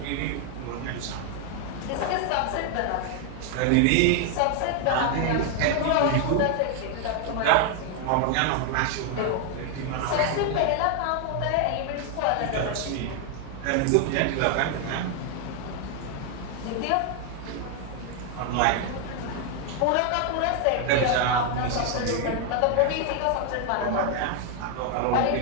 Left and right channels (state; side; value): different; both; correlation 0.00